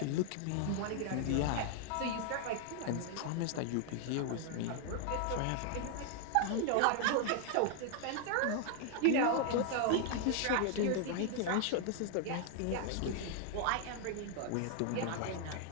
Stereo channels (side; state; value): both; different; correlation 0.00